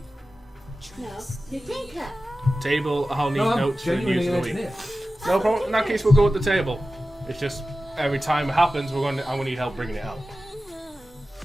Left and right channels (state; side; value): normal; both; correlation 0.95